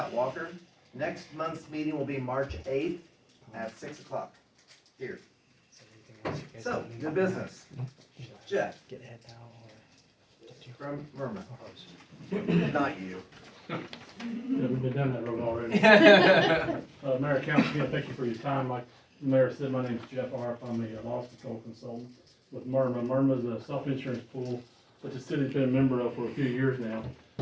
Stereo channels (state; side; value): identical; both; correlation 1.00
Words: Walker. Next month's meeting will be March 8th at 6 o'clock here. So, new business. Jeff. From Murma. Not you. Yeah, we've been down that road already. Mayor, Council, again, thank you for your time. Like the mayor said, my name is Jeff Arp. I'm a loss control consultant with Murma. Murma is a self-insurance pool that the city's been a member of for a few years now.